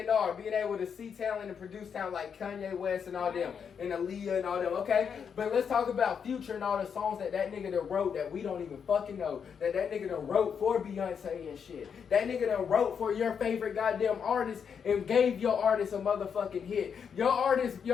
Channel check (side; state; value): right; quieter; 7.0 dB